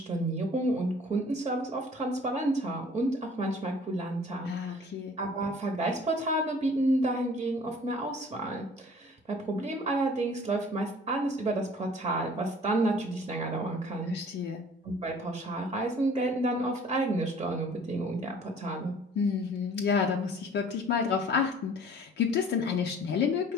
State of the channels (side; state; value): both; normal; correlation 0.51